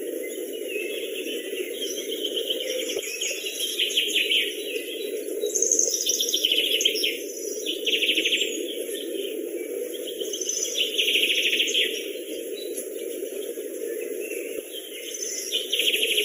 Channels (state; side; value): identical; both; correlation 1.00